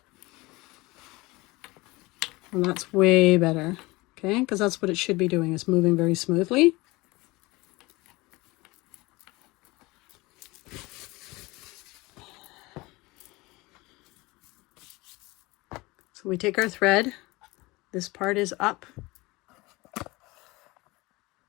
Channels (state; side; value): quieter; right; 22.4 dB